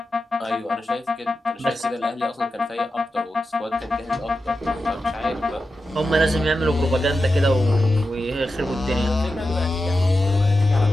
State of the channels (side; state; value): both; normal; correlation 0.91